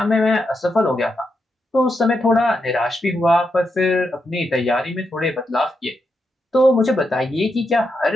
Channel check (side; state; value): both; normal; correlation 0.84